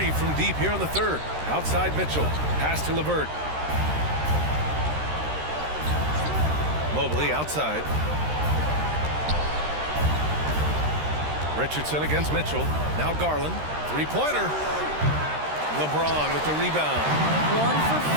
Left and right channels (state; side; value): late; left; 13 ms